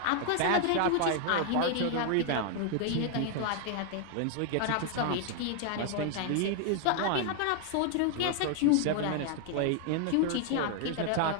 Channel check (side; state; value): both; different; correlation 0.00